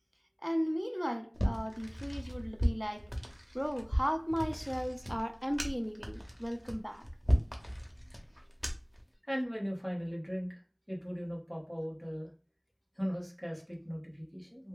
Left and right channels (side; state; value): both; identical; correlation 1.00